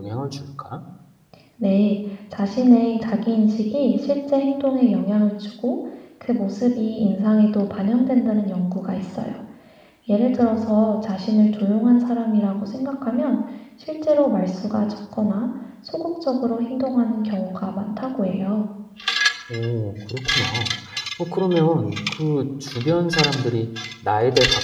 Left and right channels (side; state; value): both; identical; correlation 1.00